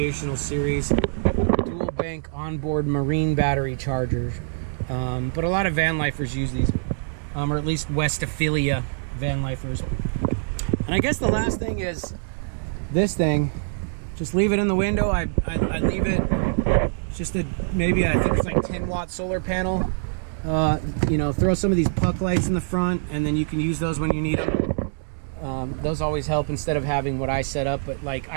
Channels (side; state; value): left; silent; digital silence